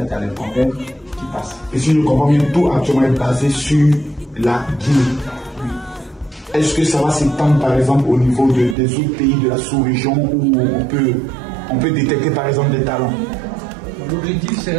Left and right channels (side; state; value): left; drops out; at 8.8 s